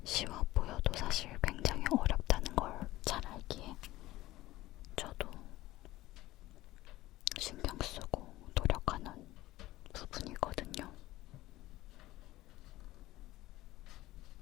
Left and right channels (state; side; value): quieter; right; 16.9 dB